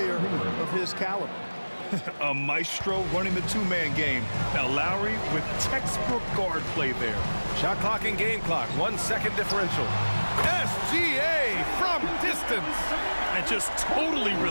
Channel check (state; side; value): inverted; both; correlation -1.00